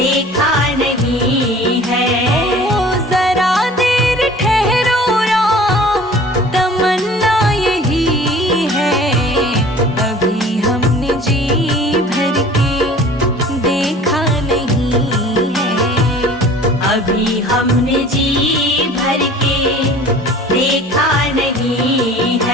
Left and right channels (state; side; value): normal; both; correlation 0.46